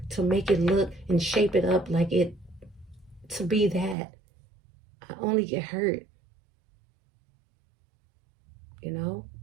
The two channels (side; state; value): left; drops out; at 4.0 s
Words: to make it look and shape it up like it to be that, I only get hurt?